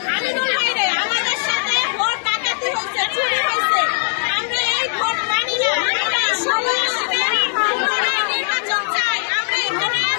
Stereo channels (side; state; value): right; silent; 64 dB below the other